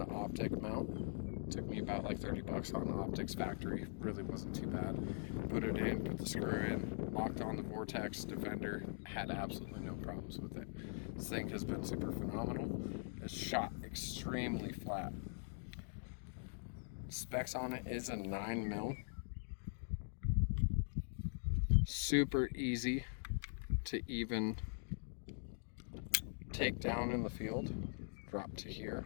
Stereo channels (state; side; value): silent; right; digital silence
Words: optic mount. Took me about like 30 bucks on the optics factory. Really wasn't too bad. Put it in, put the screw in, locked on the Vortex Defender. Had absolutely no problems with it. This thing has been super phenomenal. It's shot extremely flat. Specs on it is a 9 mil. Super easy to even take down in the field. Drop to here.